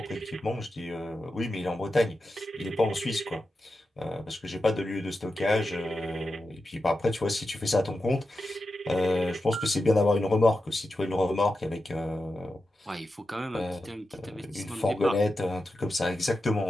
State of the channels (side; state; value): both; normal; correlation 0.90